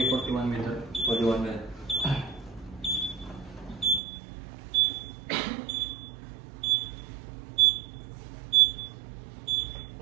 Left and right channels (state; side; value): drops out; left; at 4.0 s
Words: 41 meter. 41 meters.